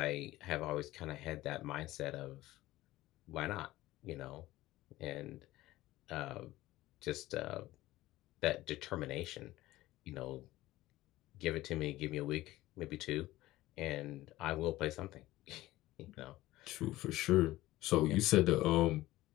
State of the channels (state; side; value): quieter; right; 16.9 dB